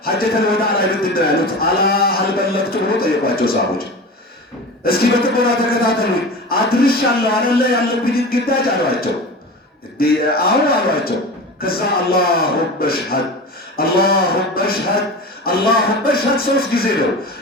ሐጀተል ወዳዕ ላይ ምንድን ነው ያሉት? አላ ሀል በለግቱ ብሎ ጠየቋቸው ሰሃቦች። እስኪ በጥሞና ተከታተሉኝ አድርሻለሁ አይደለ ያለብኝን ግዳጅ አሏቸው። አዎ አሏቸው። ከዛ አላሁመ ሽሀድ አላሁመ ሽሀድ አላሁመ ሽሀድ 3 ጊዜ ነው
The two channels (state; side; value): normal; both; correlation 0.31